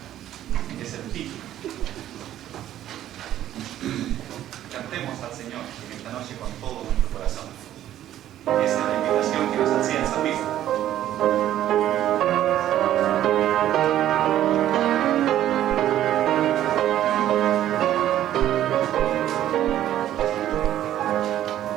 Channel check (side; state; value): left; quieter; 12.2 dB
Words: es el título. Cantemos al Señor en esta noche con todo nuestro corazón. Esa es la invitación que nos hacía el salmista.